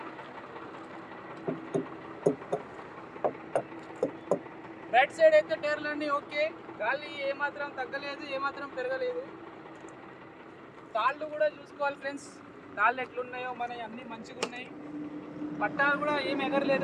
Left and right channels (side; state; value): both; identical; correlation 1.00